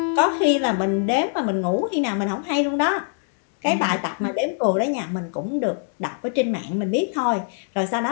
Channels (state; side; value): silent; right; 63 dB below the other